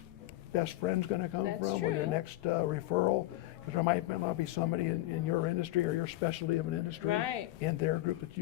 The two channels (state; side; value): quieter; right; 16.7 dB